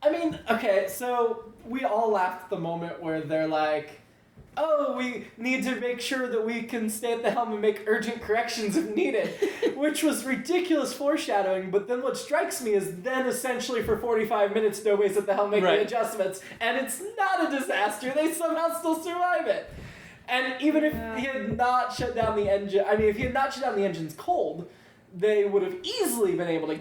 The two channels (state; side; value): identical; both; correlation 1.00